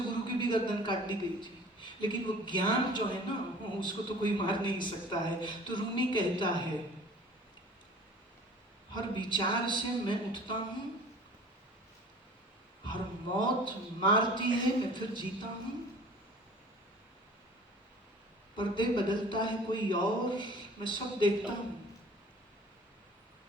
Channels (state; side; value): normal; both; correlation 0.46